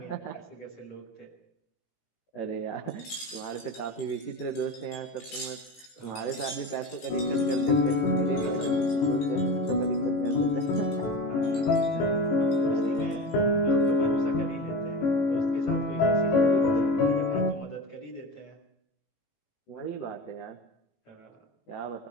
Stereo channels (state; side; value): late; right; 18 ms